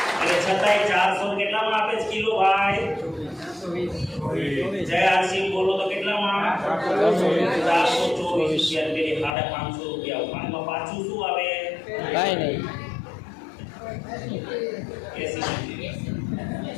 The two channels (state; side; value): drops out; right; at 9.3 s